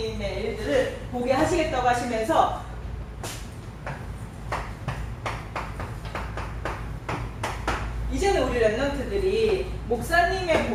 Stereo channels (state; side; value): identical; both; correlation 1.00